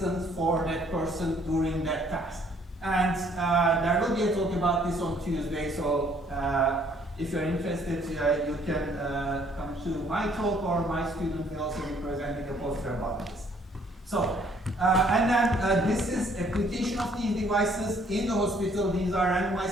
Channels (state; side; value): normal; both; correlation 0.62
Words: for that person during that task. And there will be a talk about this on Tuesday. So if you're interested, you can come to my talk, or my student will also be presenting a poster about this. So, and then this is application of these devices in the hospital. These are